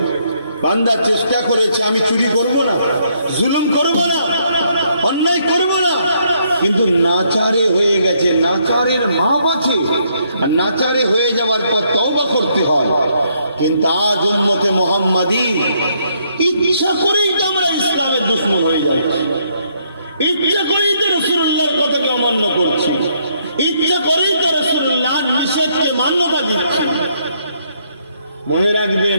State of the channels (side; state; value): both; inverted; correlation -0.72